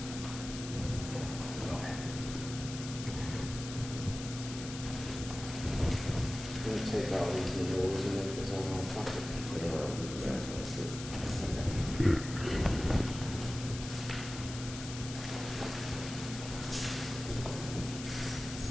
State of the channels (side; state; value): left; noise; hiss, 10 dB below the sound